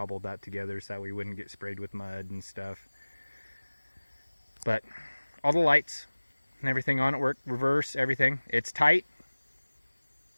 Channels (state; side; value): inverted; both; correlation -1.00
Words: that together so that we wouldn't get sprayed with mud and stuff. But all the lights and everything on it work, reverse, everything. It's tight.